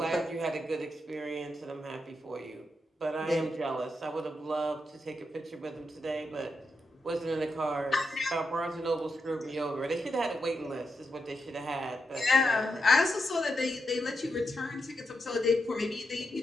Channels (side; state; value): both; normal; correlation 0.84